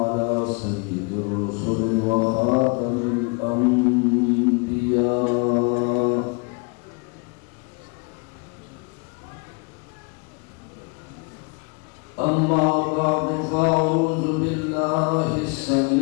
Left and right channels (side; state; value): right; quieter; 31.7 dB